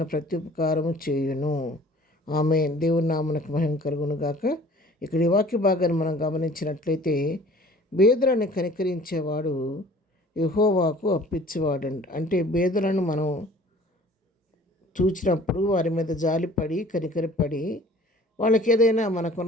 ప్రత్యుపకారము చేయును. ఆమేన్. దేవుని నామమునకు మహిమ కలుగును గాక. ఇక్కడ ఈ వాక్య భాగాన్ని మనం గమనించినట్లయితే బీదలను కనికరించేవాడు యెహోవాకు అప్పించేవాడు. అంటే బీదలను మనం చూచినప్పుడు వారి మీద జాలిపడి కనికరపడి వాళ్ళకి ఏదైనా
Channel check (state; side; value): normal; both; correlation 0.50